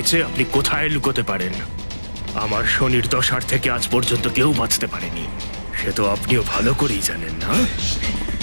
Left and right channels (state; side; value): inverted; both; correlation -1.00